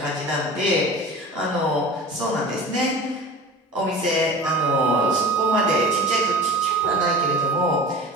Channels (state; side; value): normal; both; correlation 0.37